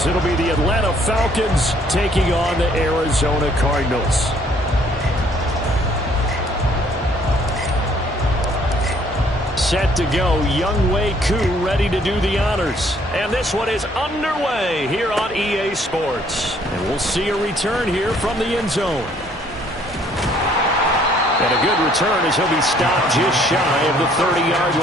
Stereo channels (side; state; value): both; normal; correlation 0.62